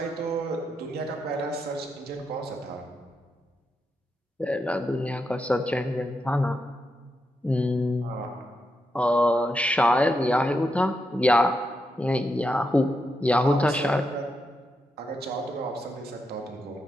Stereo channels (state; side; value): normal; both; correlation 0.84